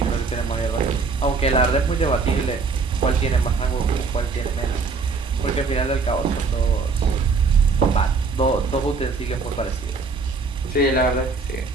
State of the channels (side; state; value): left; quieter; 4.5 dB